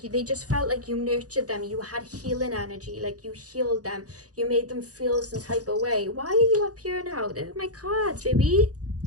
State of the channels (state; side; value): late; left; 0.67 ms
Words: they just felt like you nurtured them. You had healing energy. Like, you healed them. You made them feel some type of way. Why are you up here now? They're my cards, baby.